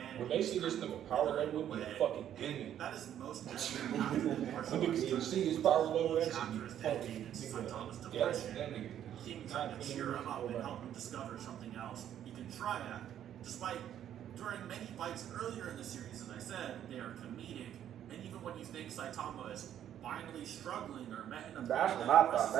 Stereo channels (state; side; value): quieter; left; 10.5 dB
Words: When they see this nigga power level, with a fucking demon. That is most evident after the martial When arts. niggas see his power level, that shit Chapter be is fucking dedicated to Saitama's nigga. Yeah, depression. that nigga. King trying to cheer him up and help him discover something else he can try at. Despite during many fights earlier in the series, as I said, they are comedic, and even when you think Saitama is finally struggling or met in a That's when I thought